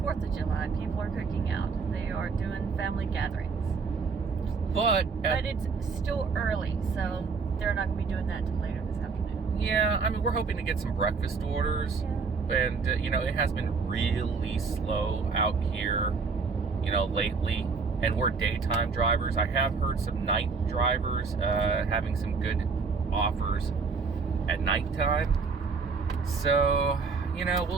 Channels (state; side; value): quieter; left; 4.9 dB